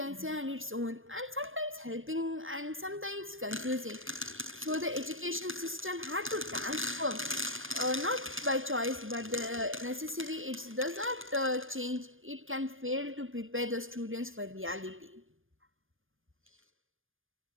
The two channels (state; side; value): late; left; 0.59 ms